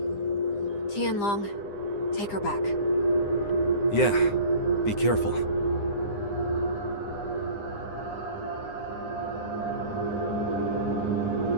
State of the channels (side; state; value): right; late; 9.8 ms